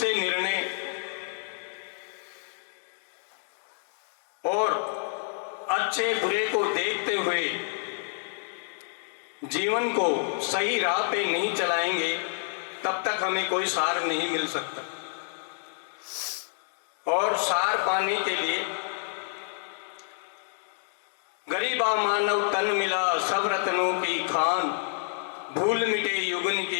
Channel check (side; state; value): right; silent; digital silence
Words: निर्णय और अच्छे बुरे को देखते हुए जीवन को सही राह पे नहीं चलाएंगे, तब तक हमें कोई सार नहीं मिल सकता। और सार पाने के लिए गरीबा मानव तन मिला सब रत्नों की खान, भूल मिटे युगन